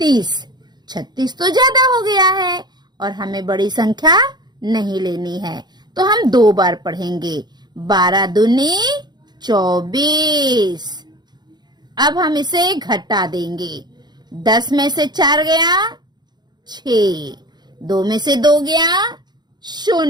36 तो ज्यादा हो गया है और हमें बड़ी संख्या नहीं लेनी है, तो हम 2 बार पढ़ेंगे। 12 दूनी 24। अब हम इसे घटा देंगे। 10 में से 4 गया 6, 2 में से 2 गया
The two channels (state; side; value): late; left; 0.21 ms